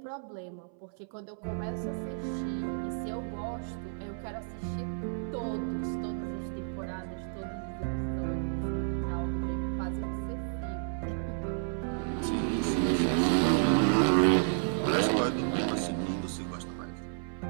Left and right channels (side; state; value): left; silent; 57 dB below the other